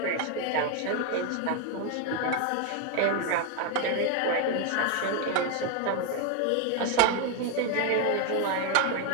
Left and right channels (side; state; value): both; different; correlation 0.01